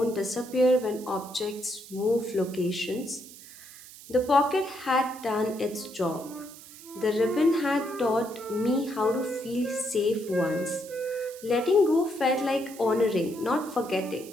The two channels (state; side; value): noise; right; hiss, 18 dB below the sound